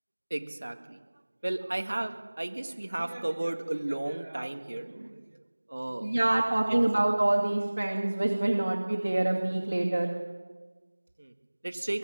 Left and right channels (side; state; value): both; inverted; correlation -1.00